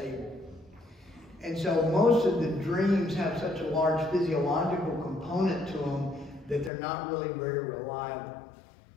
And so most of the dreams have such a large physiological component to them that they're not really very reliable.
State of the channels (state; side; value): drops out; right; at 6.7 s